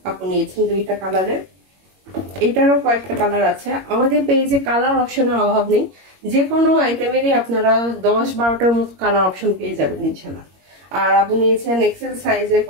আপনি নিয়েছেন দুইটা কালারের। এটারও কয়েকটা কালার আছে, আমাদের পেজে কালার অপশনের অভাব নেই, যে কোনো আইটেমেরই আপনারা 10-12টার মতো কালার অপশন পেয়ে যাবেন ইনশাল্লাহ। আর আপনি নিয়েছেন এক্সেল সাইজের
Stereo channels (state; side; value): late; left; 21 ms